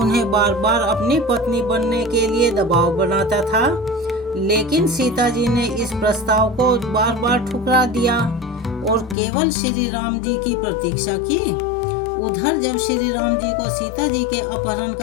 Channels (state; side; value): drops out; right; at 9.2 s